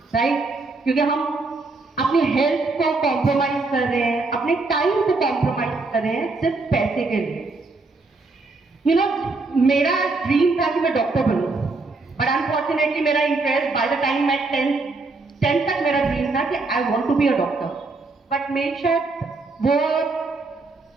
राइट? क्योंकि हम अपनी हेल्थ को कॉम्प्रोमाइज कर रहे हैं, अपने टाइम को कॉम्प्रोमाइज कर रहे हैं सिर्फ पैसे के लिए। यू नो, मेरा ड्रीम था कि मैं डॉक्टर बनूं, बट अनफॉर्चुनेटली मेरा इंटरेस्ट बाय द टाइम मैं 10 तक मेरा ड्रीम था कि I want to be a doctor, but मेरे शायद वो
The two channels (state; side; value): quieter; left; 3.6 dB